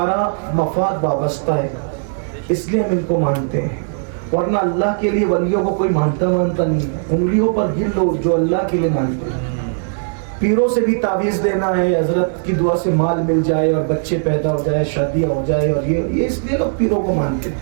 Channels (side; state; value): left; silent; digital silence